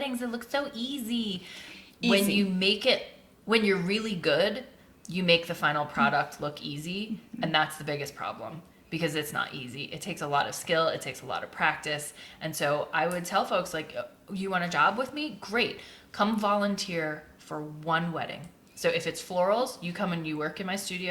It looks so easy. When you're really good, you make the final product look easy. And that's the biggest problem. Because it's not easy. It takes a lot of skill. It takes a lot of practice. And so I would tell folks, like, you want a job with me? Great. Come volunteer for one wedding. So if it's florals, you come and you work in my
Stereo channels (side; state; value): both; identical; correlation 1.00